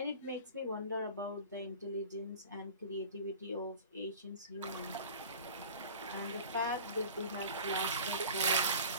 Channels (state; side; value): inverted; both; correlation -0.40